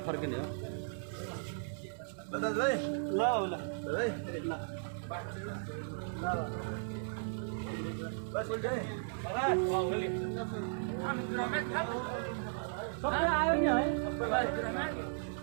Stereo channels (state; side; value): silent; left; digital silence